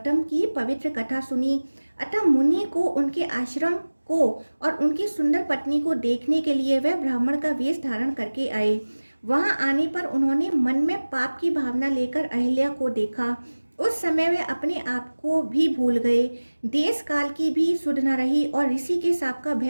की पवित्र कथा सुनी, अतः मुनि को उनके आश्रम को और उनकी सुंदर पत्नी को देखने के लिए वह ब्राह्मण का वेश धारण करके आए। वहां आने पर उन्होंने मन में पाप की भावना लेकर अहिल्या को देखा। उस समय वे अपने आप को भी भूल गए, देश काल की भी सुध न रही और ऋषि के शाप का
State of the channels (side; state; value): both; inverted; correlation -1.00